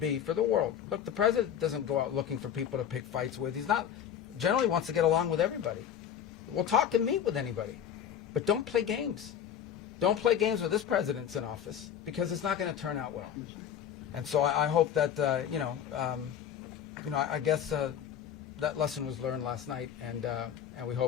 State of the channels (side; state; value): right; quieter; 9.1 dB